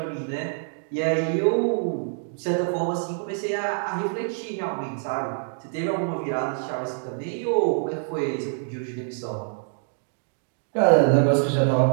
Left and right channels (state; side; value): silent; left; digital silence